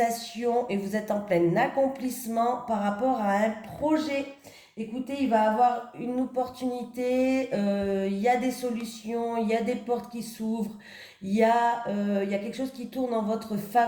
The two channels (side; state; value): both; identical; correlation 1.00